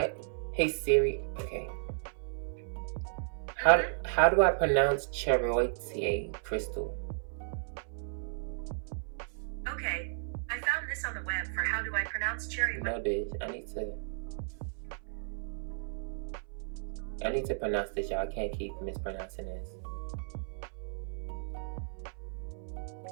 hey Siri. Okay. How do I pronounce chariote, Crystal? Okay, I found this on the web for how do I pronounce chariote. No, bitch. I need to pronounce this, y'all. I can't keep mispronouncing this.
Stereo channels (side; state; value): left; silent; 55 dB below the other